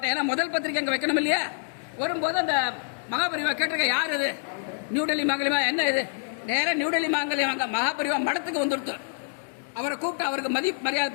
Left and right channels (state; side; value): silent; right; digital silence